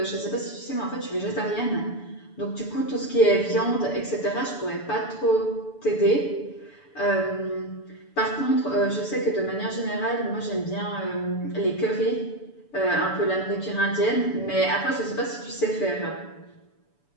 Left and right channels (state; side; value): late; right; 6.9 ms